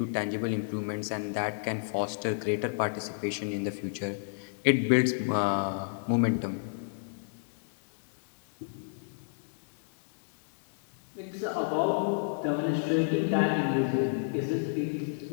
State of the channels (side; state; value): right; silent; digital silence